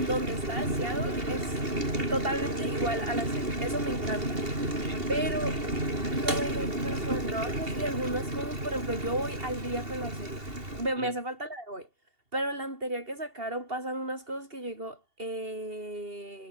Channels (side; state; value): left; late; 2.8 ms